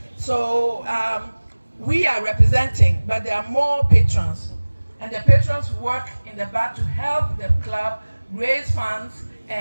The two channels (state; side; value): inverted; both; correlation -1.00